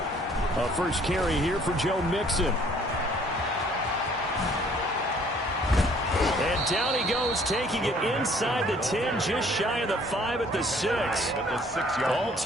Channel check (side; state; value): both; normal; correlation 0.58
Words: A first carry here for Joe Mixon. And down he goes, taking it inside the 10, just shy of the 5 at the 6. All